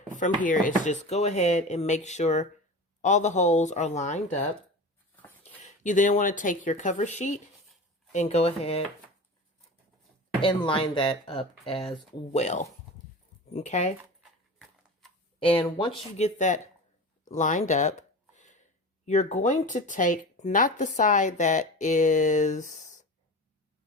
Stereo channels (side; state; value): both; normal; correlation 0.31